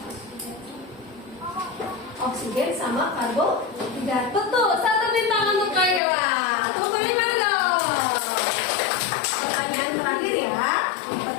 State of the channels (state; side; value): drops out; right; at 6.0 s